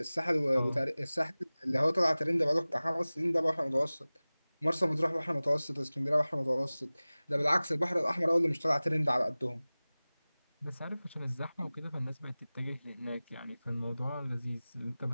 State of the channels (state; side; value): inverted; both; correlation -0.99